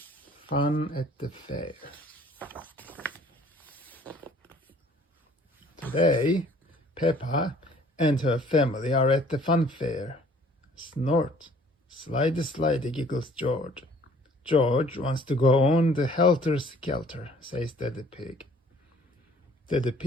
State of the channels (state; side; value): normal; both; correlation 0.55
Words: Fun at the fair. Today, Peppa and her family are at the fun fair. Snort, slide, slide, giggles George. George wants to go on the helter-skelter, says Daddy Pig. Daddy